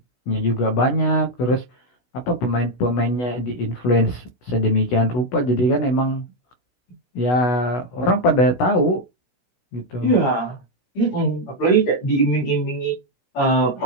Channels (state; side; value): late; right; 16 ms